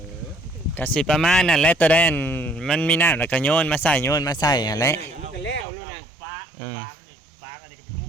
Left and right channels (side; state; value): left; drops out; at 5.7 s